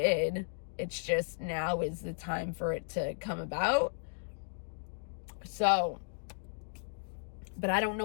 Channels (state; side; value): silent; right; digital silence